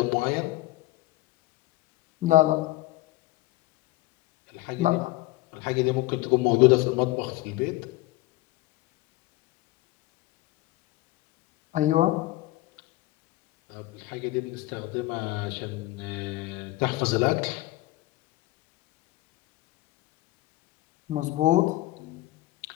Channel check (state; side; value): quieter; right; 18.2 dB